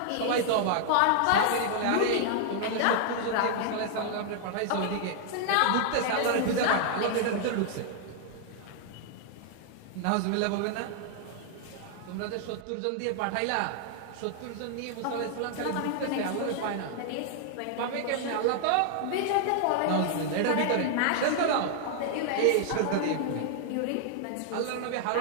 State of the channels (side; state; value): both; different; correlation 0.00